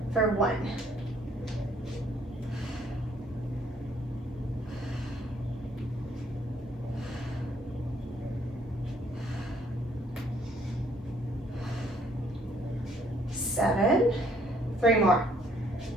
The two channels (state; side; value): normal; both; correlation 0.65